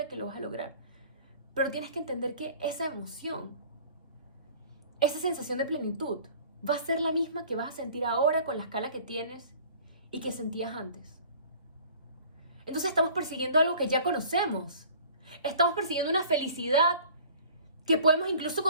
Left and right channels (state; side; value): inverted; both; correlation -0.48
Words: que lo vas a lograr. Pero tienes que entender que esa emoción, esa sensación de plenitud, va a ser la misma que vas a sentir ahora con la escala que tienes y que sentías antes. Entonces estamos persiguiendo algo que ya conocemos. Estamos persiguiendo una felicidad que podemos incluso